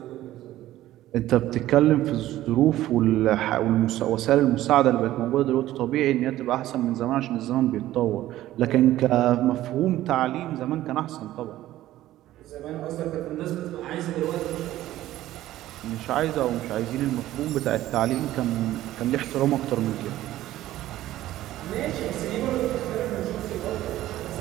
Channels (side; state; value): left; quieter; 14.6 dB